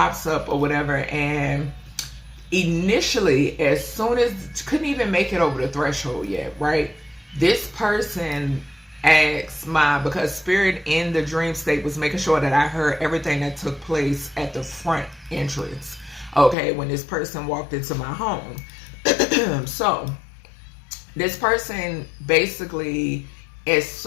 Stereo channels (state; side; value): drops out; right; at 16.6 s